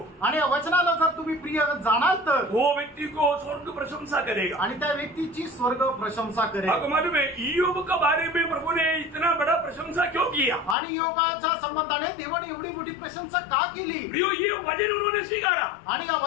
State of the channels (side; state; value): right; drops out; at 10.8 s